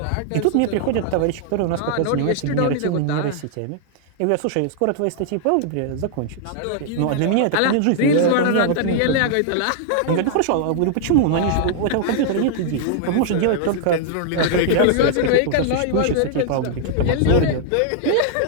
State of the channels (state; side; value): different; both; correlation -0.01